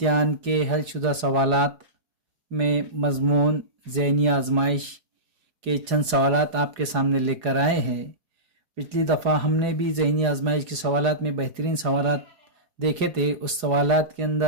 के हलशुदा सवालात में मज़मून ज़हनी आजमाइश के चंद सवालात आपके सामने लेकर आए हैं। पिछली दफ़ा हमने भी ज़हनी आजमाइश के सवालात में बेहतरीन सवालात देखे थे। उस सवालात के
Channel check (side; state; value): left; late; 4.8 ms